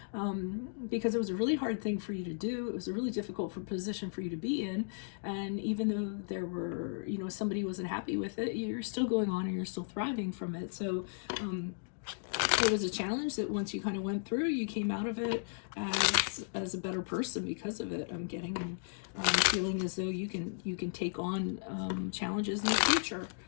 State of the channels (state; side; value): silent; right; digital silence